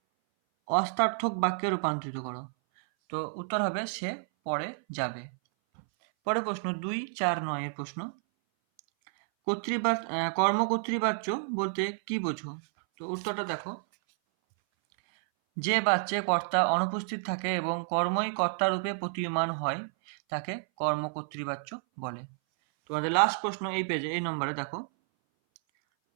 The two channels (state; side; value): silent; left; 58 dB below the other